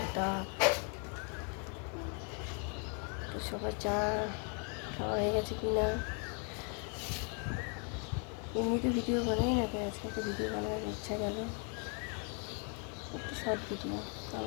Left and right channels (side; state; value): right; quieter; 39.8 dB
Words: তাপ। তো সবার চা খাওয়া হয়ে গেছে কি না? এমনিতে ভিডিও বানাই না, তাই আজকে একটা ভিডিও বানানোর ইচ্ছা গেল, একটু শর্ট ভিডিও।